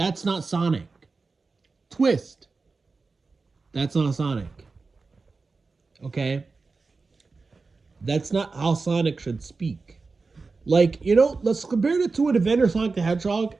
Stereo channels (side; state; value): left; quieter; 4.1 dB